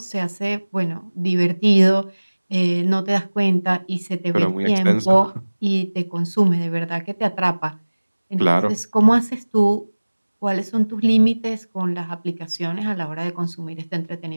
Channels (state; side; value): inverted; both; correlation -1.00